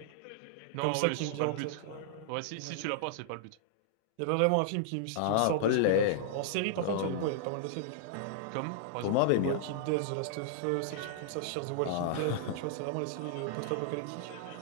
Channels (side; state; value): both; different; correlation -0.01